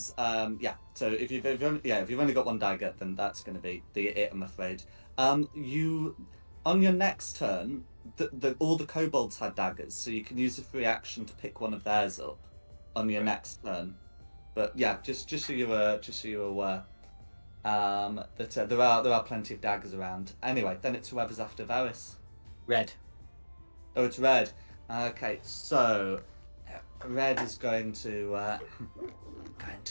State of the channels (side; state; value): both; inverted; correlation -1.00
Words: yeah. So if you've only got 1 dagger, then that's going to be it. I'm afraid. You on your next turn, all the kobolds had daggers, so you can use a free action to pick one of theirs up on your next turn. But yeah, just so you're aware. That there are plenty of daggers around. Anyway, then it's whoever's after Varus. Red. Oh, it's Red. Okay, so Red is going to look